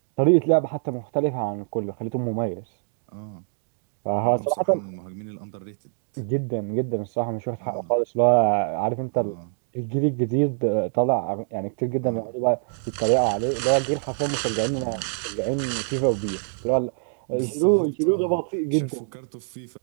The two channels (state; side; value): silent; left; digital silence